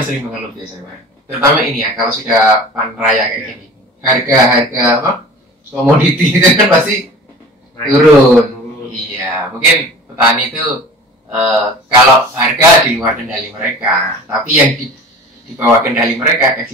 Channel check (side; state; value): both; normal; correlation 0.41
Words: sering mengeluh biasanya, Pak. terutama ini ya, kalau sudah panen raya kayak gini, harga apa komoditi itu kan pasti turun. Iya, mungkin petani itu kalau harga di luar kendali mereka, tapi yang di bawah kendali mereka